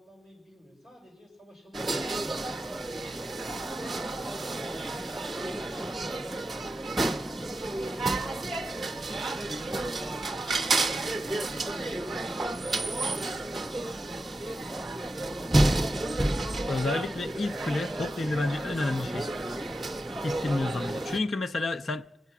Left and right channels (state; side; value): normal; both; correlation 0.89